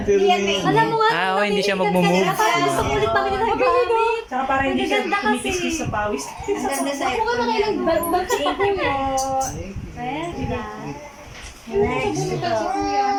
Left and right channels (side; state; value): both; identical; correlation 1.00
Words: pero may... Alam mo nga. Ah, hindi siya magmumove. Parang gusto ko ulit pamili ng gamit. Tsaka parang hindi siya Maganda kasi. kumikiskis sa pawis. Ang ganda sa Ako nga nakailang mag-check mo. Pwede. Next.